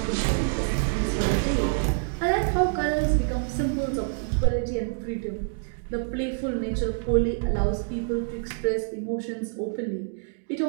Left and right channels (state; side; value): silent; left; 61 dB below the other